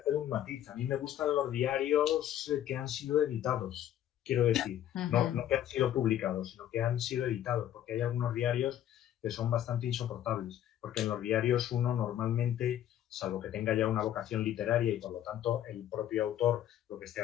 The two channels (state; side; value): quieter; right; 11.4 dB